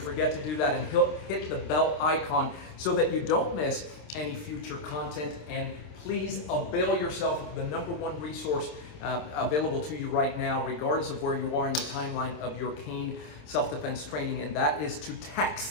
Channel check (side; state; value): right; late; 27 ms